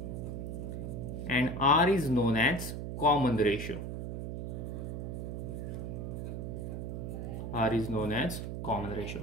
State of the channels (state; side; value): noise; right; hum, 5 dB below the sound